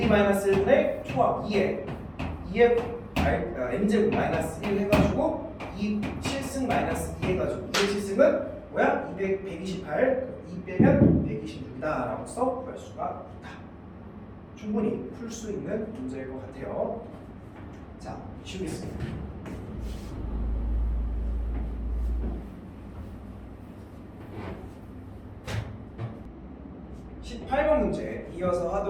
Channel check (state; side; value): identical; both; correlation 1.00